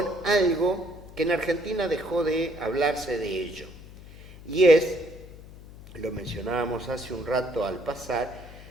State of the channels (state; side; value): noise; left; hum, 17 dB below the sound